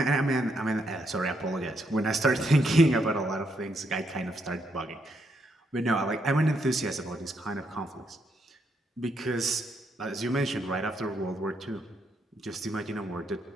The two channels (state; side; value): normal; both; correlation 0.77